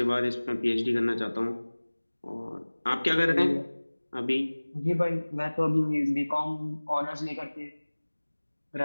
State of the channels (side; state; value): both; inverted; correlation -1.00